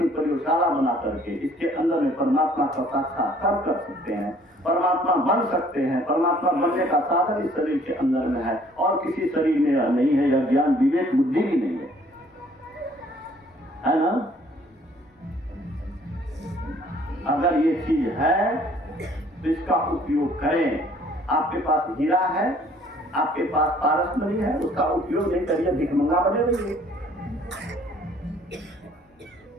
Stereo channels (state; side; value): normal; both; correlation 0.58